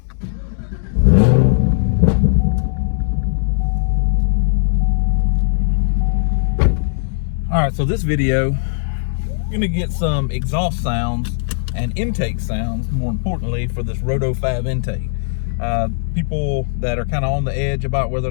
All right, so this video, you're gonna get some exhaust sounds and intake sounds, more importantly, for this RotoFab intake. People that are kind of on the edge about whether or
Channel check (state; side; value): silent; right; digital silence